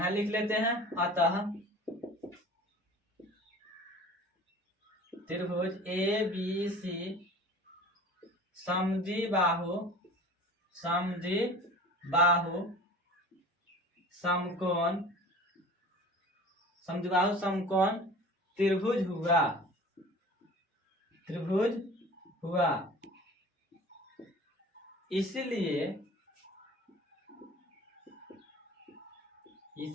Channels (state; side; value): normal; both; correlation 0.41